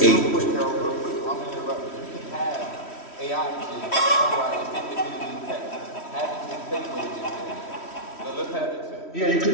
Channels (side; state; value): right; late; 3.1 ms